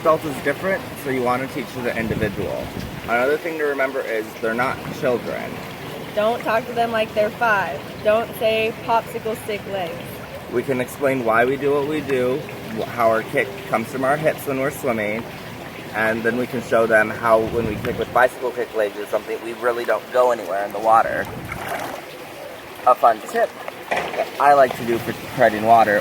is different, so you want to teach to the individual. Another thing to remember is they're not children. Don't talk to them like they're 5. Don't say popsicle stick legs. We can explain why we do what we do, how our kick comes from our hips when we're swimming, and then we can show them how when we kick with bicycle kick legs or something, we really don't go anywhere in the water. A fun tip that I like to do for treading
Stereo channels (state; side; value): identical; both; correlation 1.00